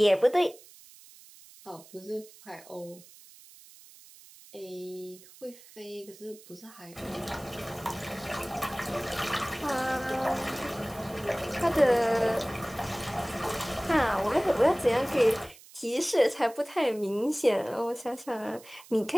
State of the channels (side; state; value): right; noise; hiss, 22 dB below the sound